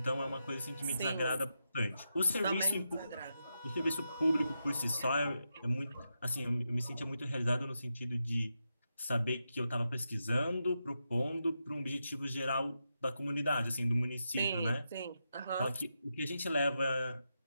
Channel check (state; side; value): inverted; both; correlation -0.86